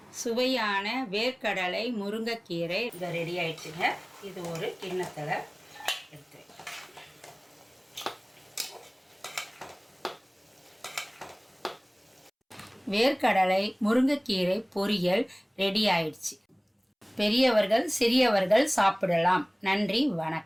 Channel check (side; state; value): both; identical; correlation 1.00